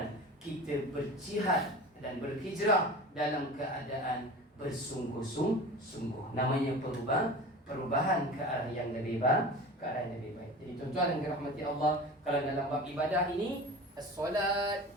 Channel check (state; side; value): normal; both; correlation 0.35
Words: kita berjihad dan berhijrah dalam keadaan bersungguh-sungguh. Namanya perubahan ke arah yang lebih baik. Jadi tuan-tuan yang dirahmati Allah, kalau dalam bab ibadah ini, solat,